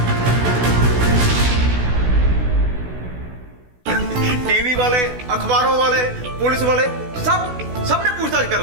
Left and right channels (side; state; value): left; late; 16 ms